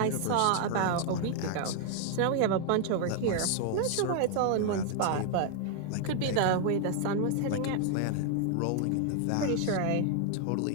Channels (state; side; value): different; both; correlation 0.00